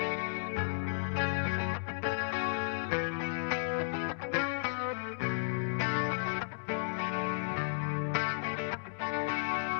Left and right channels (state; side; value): silent; right; digital silence